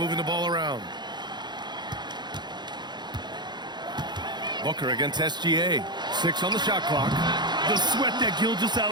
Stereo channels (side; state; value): left; late; 0.21 ms